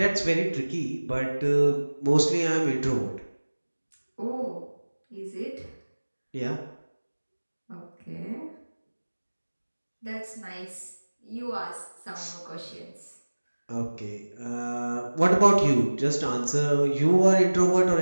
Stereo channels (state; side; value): inverted; both; correlation -1.00